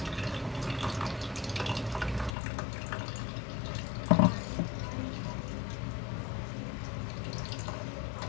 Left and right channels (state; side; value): drops out; right; at 2.3 s